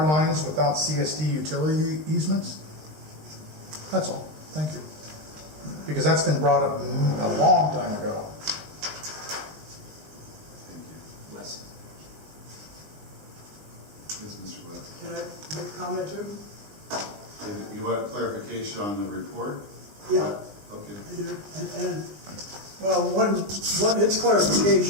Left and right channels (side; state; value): left; late; 20 ms